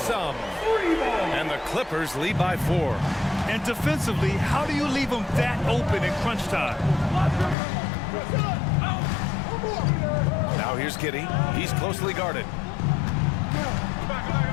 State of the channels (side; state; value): right; drops out; at 7.6 s